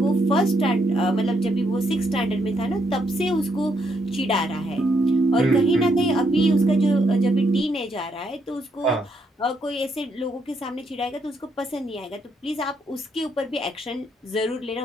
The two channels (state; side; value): normal; both; correlation 0.75